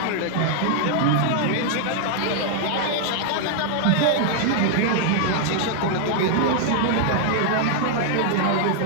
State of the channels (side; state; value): both; different; correlation 0.00